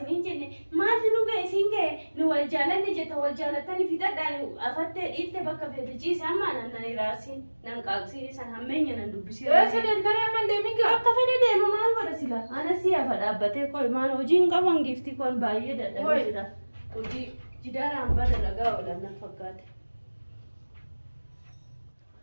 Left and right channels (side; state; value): both; inverted; correlation -1.00